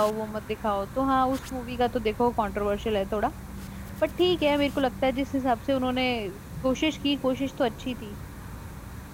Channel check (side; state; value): both; identical; correlation 1.00